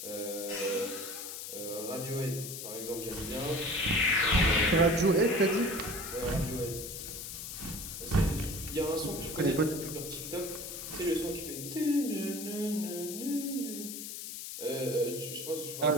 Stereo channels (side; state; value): left; noise; hiss, 8 dB below the sound